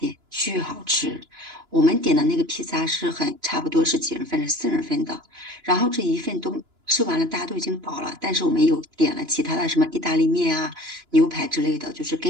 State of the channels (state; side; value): late; left; 2.9 ms